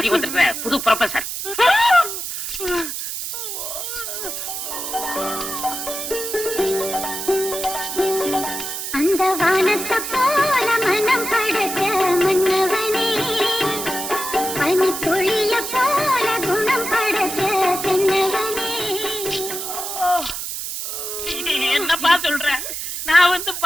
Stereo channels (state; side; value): noise; right; hiss, 5 dB below the sound